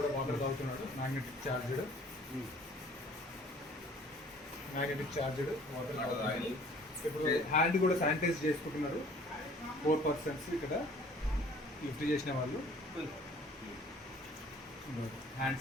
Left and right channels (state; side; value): normal; both; correlation 0.53